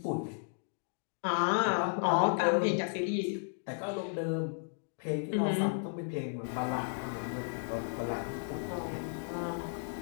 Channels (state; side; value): silent; right; digital silence